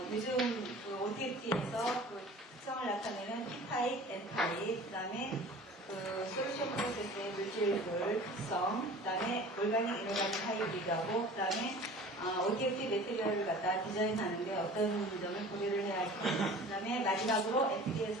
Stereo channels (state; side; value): normal; both; correlation 0.43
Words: 요즘 그 OTFT에서 그 특성을 나타내는 P-타입, N-타입, 그 다음에 그 솔루션 프로세스의 물질들 특성, 그 다음에 올가닉, 이노가닉 하이브리드하고, 그 다음에 OTFT 매트리얼을 갖다 디자인하는데 어떤 점을 고려를 해야 할까. 그 다음에 마지막으로